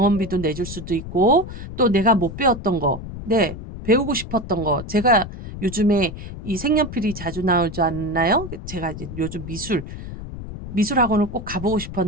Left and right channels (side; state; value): left; noise; rumble, 10 dB below the sound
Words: 내줄 수도 있고 또 내가 못 배웠던 거, 배우고 싶었던 거 제가 요즘에 이 색연필이 자주 나오지 않나요? 제가 이제 요즘 미술학원을 꼭 가보고